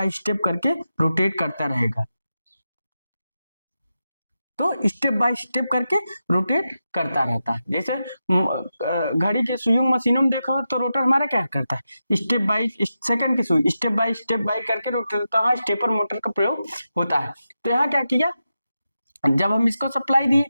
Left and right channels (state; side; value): inverted; both; correlation -0.90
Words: स्टेप करके रोटेट करता रहेगा। तो स्टेप बाय स्टेप करके रोटेट करता रहता है। जैसे घड़ी के सुइयों मशीनों में देखो तो रोटर हमारा क्या करता है, स्टेप बाय सेकंड की सुई स्टेप बाय करके रोटेट होता है, स्टेपर मोटर का प्रयोग होता है। तो यहाँ क्या किया, जब हम इसको सप्लाई दिए